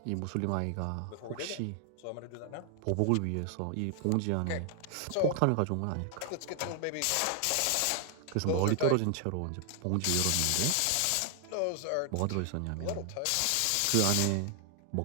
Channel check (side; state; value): both; different; correlation 0.00